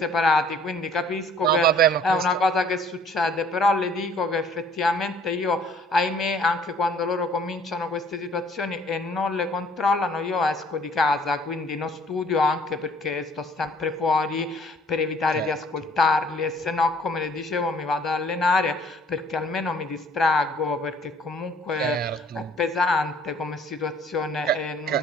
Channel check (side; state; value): both; normal; correlation 0.57